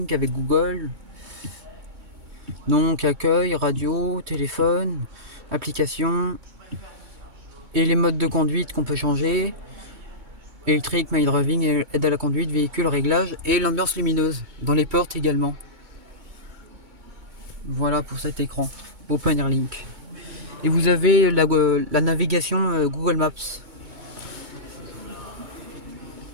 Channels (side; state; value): left; late; 2.2 ms